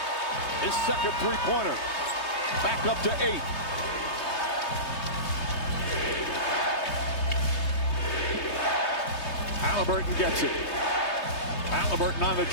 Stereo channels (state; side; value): late; right; 3.2 ms